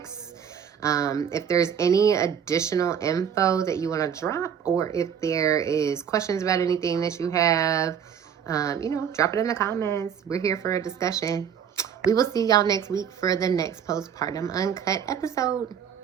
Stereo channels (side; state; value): left; quieter; 8.1 dB